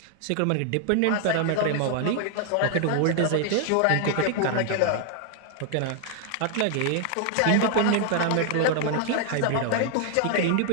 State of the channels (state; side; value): different; both; correlation 0.00